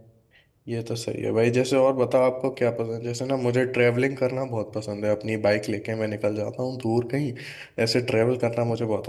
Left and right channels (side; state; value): both; identical; correlation 1.00